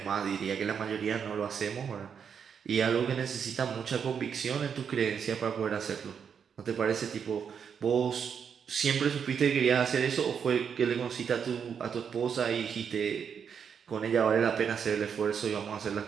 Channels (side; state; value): left; quieter; 7.1 dB